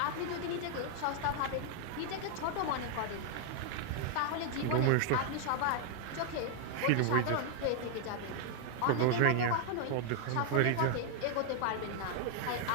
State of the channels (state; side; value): different; both; correlation 0.00